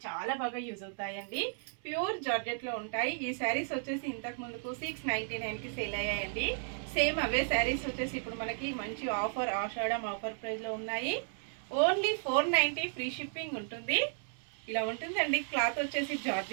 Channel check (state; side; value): silent; left; 55 dB below the other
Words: చాలా బాగా యూజ్ అవుతాయండి. ప్యూర్ జార్జెట్లో ఉంటాయి. ఈ శారీస్ వచ్చేసి ఇంతకు ముందుకు 699కి సేల్ అయ్యాయండి. సేమ్ అవే శారీస్ వచ్చేసి ఇప్పుడు మనకి మంచి ఆఫర్, ఆషాఢం ఆఫర్ ప్రైస్లో ఉన్నాయి. ఓన్లీ 490 ఫ్రీ షిప్పింగ్ ఉంటుంది. ఇలా ఉంటుందండి. క్లాత్ వచ్చేసి